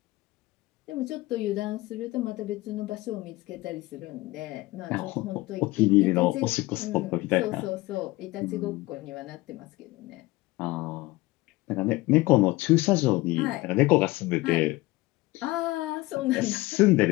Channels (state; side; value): quieter; right; 20.2 dB